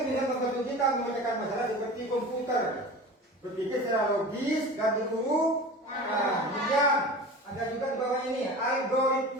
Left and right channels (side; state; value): both; normal; correlation 0.35